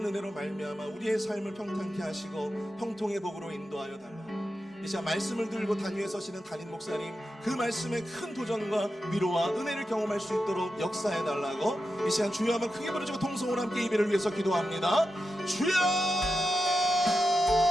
은혜로 말미암아 우리의 삶을 평탄케 하시고 형통의 복으로 인도하여 달라고, 이 시간 말씀을 들고 단위에 서시는 담임 목사님, 그 말씀의 큰 도전과 위로와 은혜를 경험할 수 있도록 역사해 달라고 이 시간 주여 한번 크게 부르시고 통성으로 함께 예배를 위해서 기도합니다. 주여!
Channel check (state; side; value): normal; both; correlation 0.89